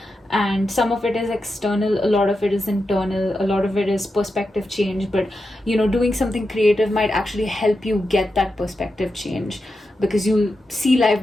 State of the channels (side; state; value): both; normal; correlation 0.89